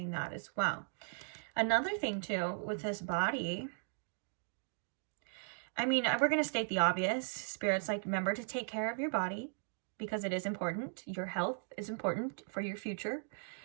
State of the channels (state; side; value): silent; left; digital silence